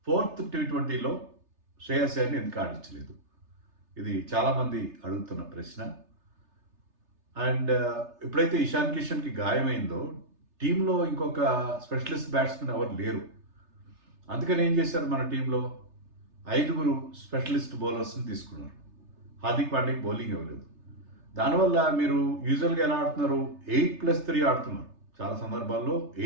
Fourth T20లో శ్రేయస్ అయ్యర్ని ఎందుకు ఆడించలేదు? ఇది చాలామంది అడుగుతున్న ప్రశ్న. అండ్ ఎప్పుడైతే ఇషాన్ కిషన్కి గాయమైందో టీంలో ఇంకొక స్పెషలిస్ట్ బ్యాట్స్మెన్ ఎవరు లేరు. అందుకని ఏం చేశారు, మన టీంలో 5 స్పెషలిస్ట్ బౌలర్స్ని తీసుకున్నారు. హార్దిక్ పాండ్యాకి బౌలింగ్ ఇవ్వలేదు. దానివల్ల మీరు యూజువల్గా ఎలా ఆడుతున్నారు, 8+3 ఆడుతున్నారు. చాలా సందర్భాల్లో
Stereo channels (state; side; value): late; left; 3.3 ms